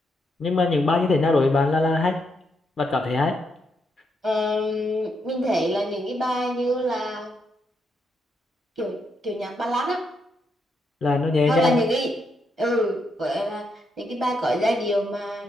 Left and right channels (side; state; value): both; normal; correlation 0.79